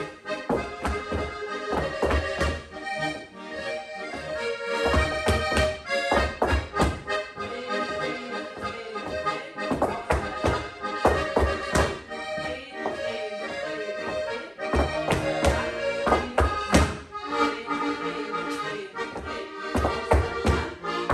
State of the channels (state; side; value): identical; both; correlation 1.00